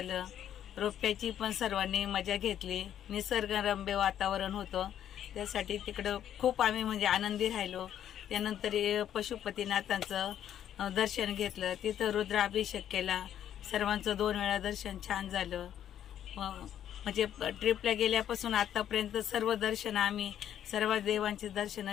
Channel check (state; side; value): quieter; right; 10.4 dB